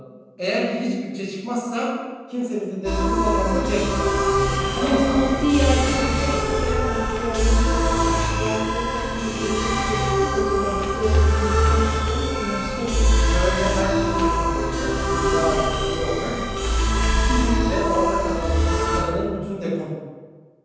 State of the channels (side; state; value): both; identical; correlation 1.00